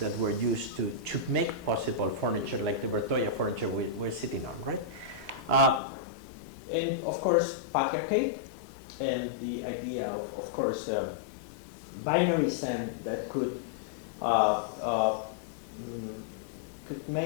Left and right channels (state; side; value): drops out; right; at 5.8 s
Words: were used to make possible furniture like the Bertoia furniture we're sitting on, right? And of course, patriarchate and the idea of course, binarism that could